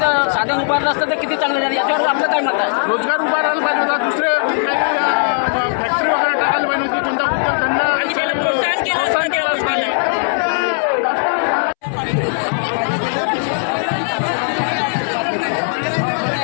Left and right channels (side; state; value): right; silent; 67 dB below the other